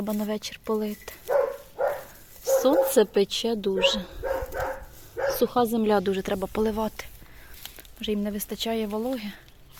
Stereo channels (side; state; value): both; identical; correlation 1.00